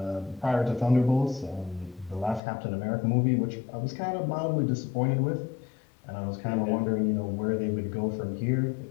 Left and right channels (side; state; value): right; drops out; at 2.4 s